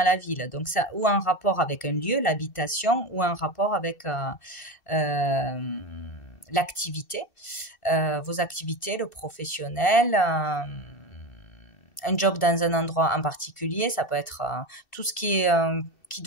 la ville. Donc, ça, ou un rapport avec un lieu, l'habitation, ou un rapport avec l'activité, vos activités, le professionnel, un job dans un endroit en particulier. Ça peut être tout ce qui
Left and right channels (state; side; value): late; right; 2.6 ms